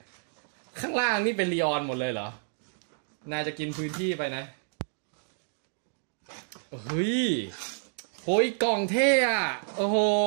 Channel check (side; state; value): left; silent; digital silence